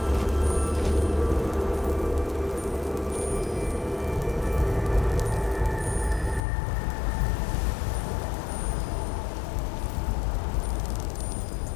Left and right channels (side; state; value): right; drops out; at 6.4 s